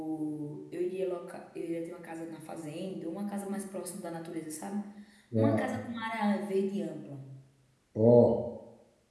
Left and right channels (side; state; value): both; identical; correlation 1.00